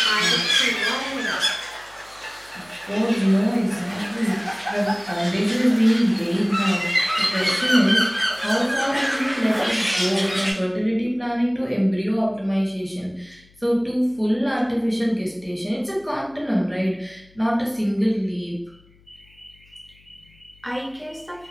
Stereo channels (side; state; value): left; noise; hum, 29 dB below the sound